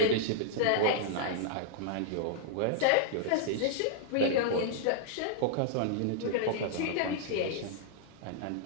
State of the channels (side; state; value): both; different; correlation -0.01